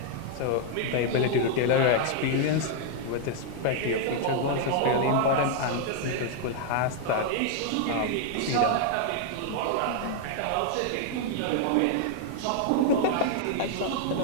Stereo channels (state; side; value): different; both; correlation 0.00